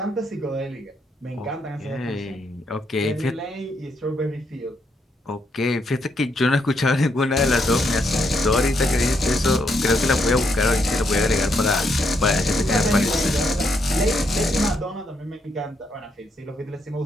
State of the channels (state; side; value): normal; both; correlation 0.77